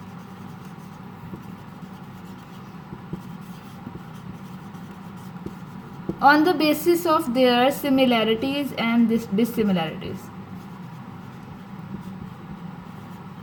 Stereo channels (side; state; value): both; identical; correlation 1.00